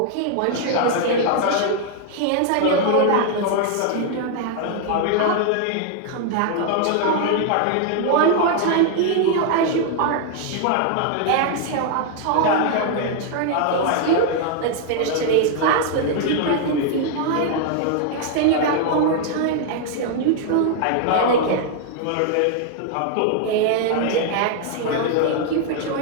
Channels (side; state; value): both; different; correlation 0.00